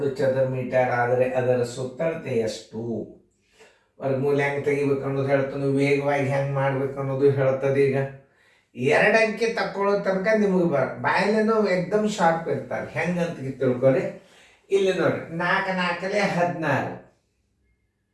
ಚದರ ಮೀಟರ್ ಆದರೆ ಅದರ ಸುತ್ತಳತೆ ಎಷ್ಟು, ವರ್ಗಮೂಲ ಹೆಂಗೆ ತೆಗಿಬೇಕು ಅನ್ನೋದು ಹೇಳ್ತಾನೆ, ವೇಗವಾಗಿ ಹೆಂಗೆ ಮಾಡ್ಬೇಕು ಅನ್ನೋದು ಹೇಳ್ತದೆ. ಈಗ 2 ಅಂಕೆ ತಕ್ಕೊಳ್ಳೋ ತನಕ ನಿಮಗೆ ಬಾಯಲ್ಲೇನೋ ಎಕ್ದಮ್ ಶಾರ್ಪ್ ಇರ್ತಾರೆ. ಹೆಂಗೆ ಅಂತ ತಿಳ್ಕೊರಿ. ಇಲ್ಲಿ ನೋಡ್ರಿ, 4 4 16,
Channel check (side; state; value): both; identical; correlation 1.00